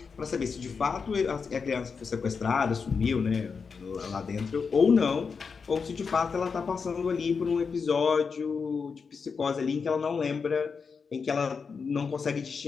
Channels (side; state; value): right; quieter; 5.5 dB